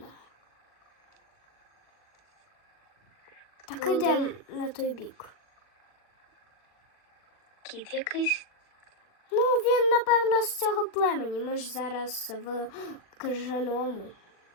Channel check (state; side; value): late; right; 39 ms